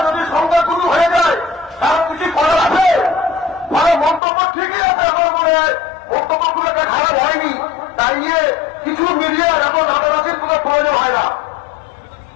যদি সংখ্যাগুরু হয়ে যায়, তার কিছু করার আছে? মানে মন্তব্য ঠিকই আছে, আমার মনে হয় বক্তব্যগুলোকে খারাপ হয়নি, তাই নিয়ে কিছু মিডিয়ার এখন রাতারাতির কোনো প্রয়োজন হয় না।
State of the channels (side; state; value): right; drops out; at 4.2 s